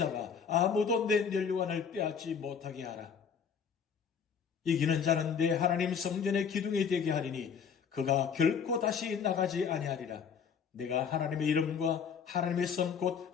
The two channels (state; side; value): quieter; right; 6.8 dB